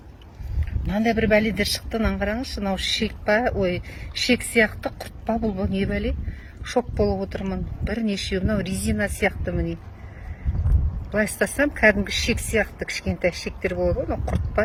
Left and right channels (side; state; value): both; identical; correlation 1.00